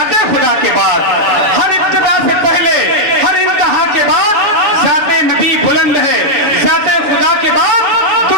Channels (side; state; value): left; late; 6.8 ms